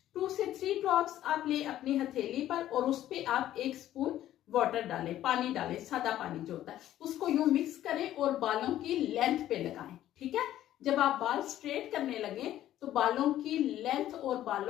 2 से 3 ड्रॉप्स आप ले अपनी हथेली पर और उस पे आप 1 स्पून वाटर डालें, पानी डालें, सादा पानी जो होता है, उसको यूं मिक्स करें और बालों की लेंथ पे लगाएं। ठीक है, जब आप बाल स्ट्रेट करने लगे तो बालों की लेंथ और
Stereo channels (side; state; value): right; quieter; 12.8 dB